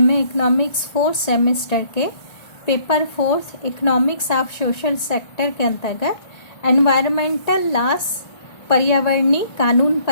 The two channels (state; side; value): late; right; 1.9 ms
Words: इकोनॉमिक्स 4th सेमेस्टर के paper 4 economics of social sector के अंतर्गत एनवायरमेंटल लॉस पर्यावरणीय कानून